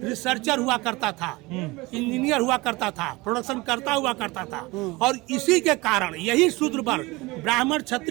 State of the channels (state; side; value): quieter; left; 22.6 dB